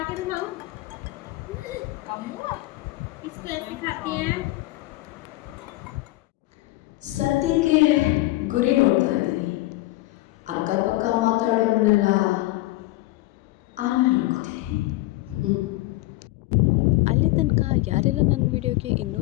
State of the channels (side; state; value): right; quieter; 19.0 dB